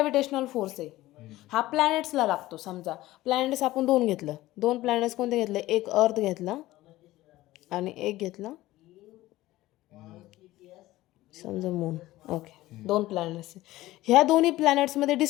फोर्स आहे हा प्लॅनेट्सला लागतो. समजा प्लॅनेट्स आपण 2 घेतलं. 2 प्लॅनेट्स कोणते घेतले? एक अर्थ घेतला आणि एक घेतला समजा मून. Okay, 2 planets. ह्या दोन्ही प्लॅनेट्समध्ये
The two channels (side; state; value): right; quieter; 16.8 dB